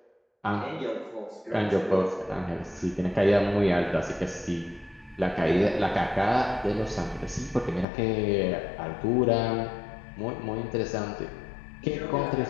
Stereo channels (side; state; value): right; drops out; at 7.9 s